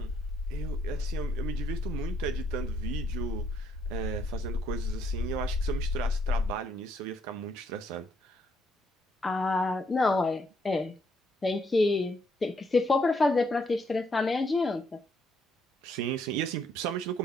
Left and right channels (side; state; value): both; normal; correlation 0.71